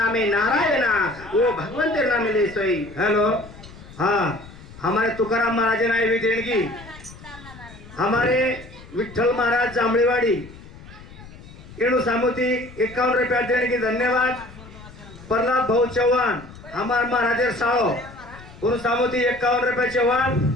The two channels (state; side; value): noise; left; rumble, 18 dB below the sound